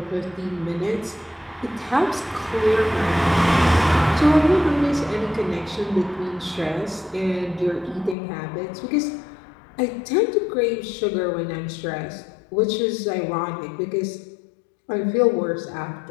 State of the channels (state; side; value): drops out; right; at 8.2 s